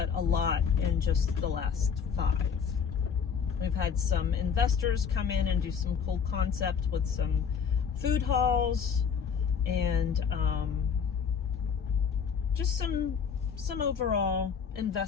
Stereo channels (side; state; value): right; quieter; 6.7 dB